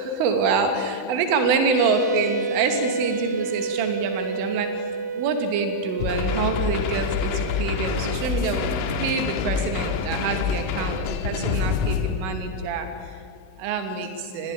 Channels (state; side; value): late; left; 16 ms